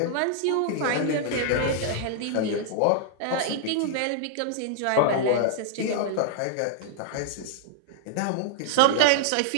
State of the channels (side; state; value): both; different; correlation -0.01